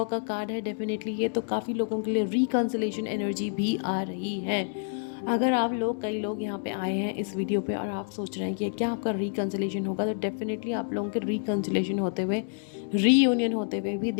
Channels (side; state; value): right; silent; 59 dB below the other